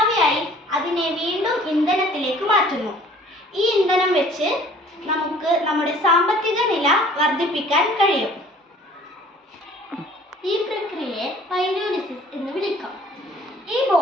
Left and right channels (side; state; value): both; normal; correlation 0.52